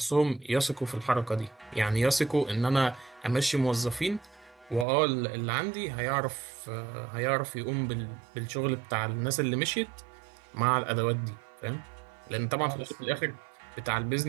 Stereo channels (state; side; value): drops out; left; at 4.9 s